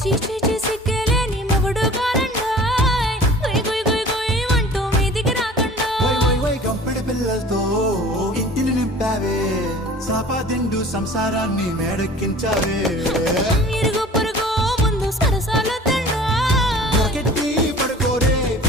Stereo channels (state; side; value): normal; both; correlation 0.45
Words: చీచీ సిగ్గలేని మొగుడు కారండాయ్ గుయ్ గుయ్ గుయ్ గుయ్ అంటూ మీదికి రాకుండా గంపెడి పిల్లలతో ఇంటిని నింపావే సాపాదిండు సంసారాన్ని మేడెక్కించావే ఇరుగు పొరుగు ముందు సరసాల తండా రాకెట్టి పడుకోరే